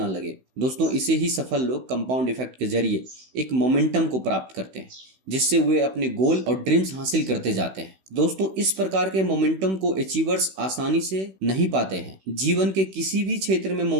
लगे। दोस्तों, इसे ही सफल लोग कंपाउंड इफेक्ट के जरिए एक मोमेंटम को प्राप्त करते हैं, जिससे वे अपने गोल और ड्रीम्स हासिल करते जाते हैं। दोस्तों, इस प्रकार के मोमेंटम को अचीवर्स आसानी से नहीं पाते हैं। जीवन के किसी भी क्षेत्र में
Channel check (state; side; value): late; left; 16 ms